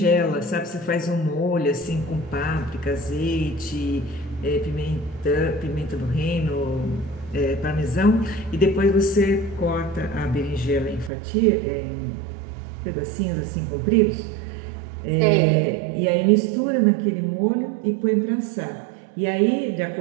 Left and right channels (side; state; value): left; drops out; at 11.1 s